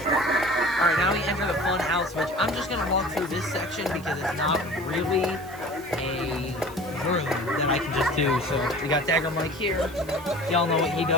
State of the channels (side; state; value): right; noise; hiss, 21 dB below the sound